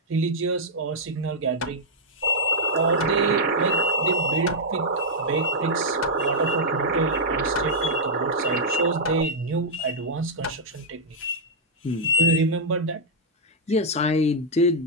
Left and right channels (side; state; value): both; normal; correlation -0.06